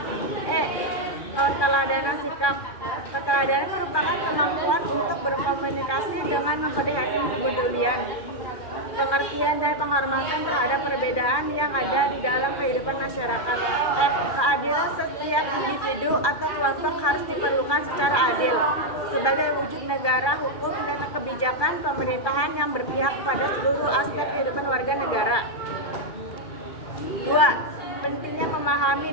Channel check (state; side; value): late; right; 2.4 ms